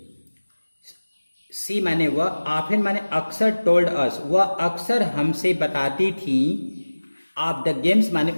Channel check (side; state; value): both; inverted; correlation -1.00